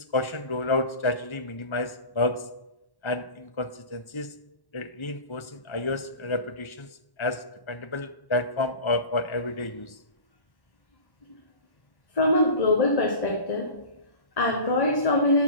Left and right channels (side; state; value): right; late; 1.1 ms